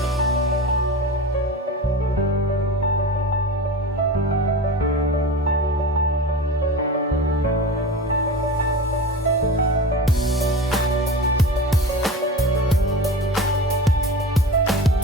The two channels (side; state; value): both; normal; correlation 0.31